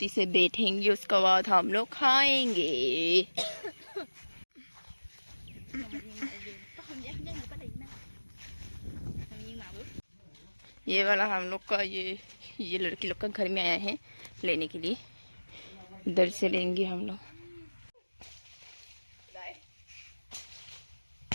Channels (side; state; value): both; inverted; correlation -1.00